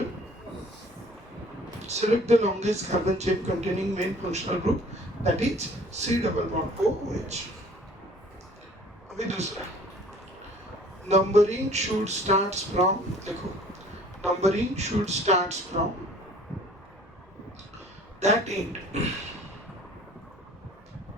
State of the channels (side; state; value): both; normal; correlation 0.52